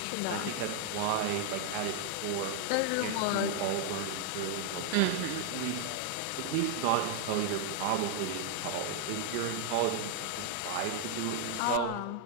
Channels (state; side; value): different; both; correlation 0.00